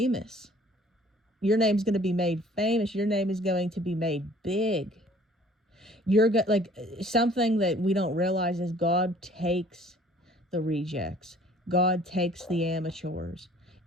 Your name's going to be made famous. Your name is going to be made big. Like something that we don't realize is God takes the rejects. God takes the amateurs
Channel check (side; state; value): both; normal; correlation 0.54